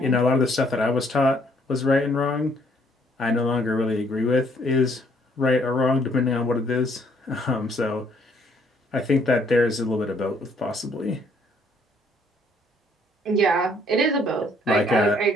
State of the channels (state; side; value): normal; both; correlation 0.65